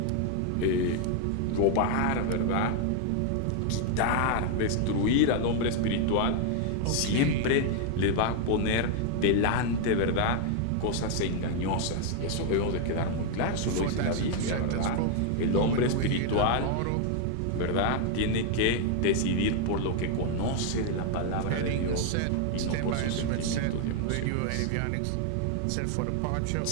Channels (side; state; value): both; different; correlation 0.00